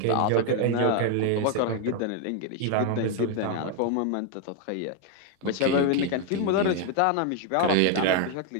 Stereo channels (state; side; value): different; both; correlation 0.01